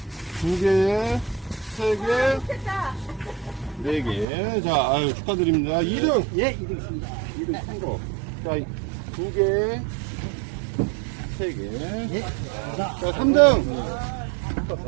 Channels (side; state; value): left; drops out; at 4.2 s